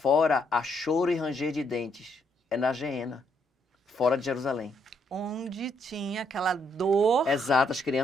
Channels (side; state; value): both; normal; correlation 0.73